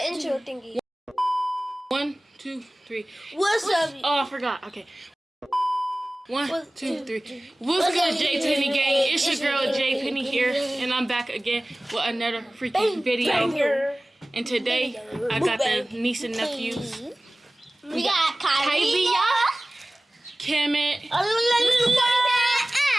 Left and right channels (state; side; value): normal; both; correlation 0.98